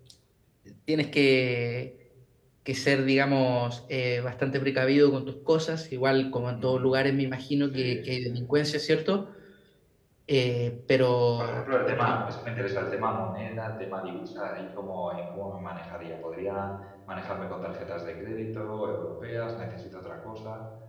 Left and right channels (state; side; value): identical; both; correlation 1.00